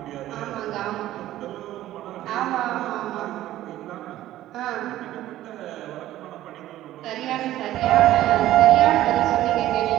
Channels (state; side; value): quieter; left; 14.1 dB